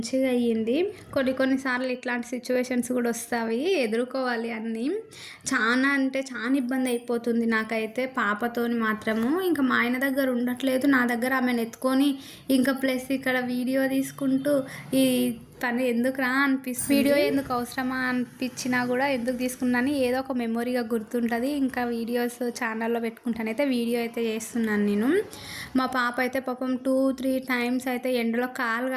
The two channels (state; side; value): identical; both; correlation 1.00